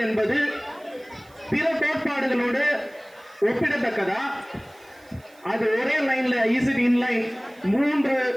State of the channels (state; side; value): noise; right; hiss, 29 dB below the sound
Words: என்பது பிற கோட்பாடுகளோடு ஒப்பிடத்தக்கதா? அது ஒரே லைன்ல இன்லைன் 3